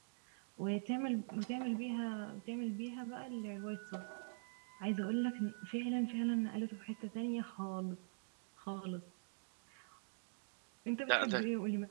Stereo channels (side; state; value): left; silent; digital silence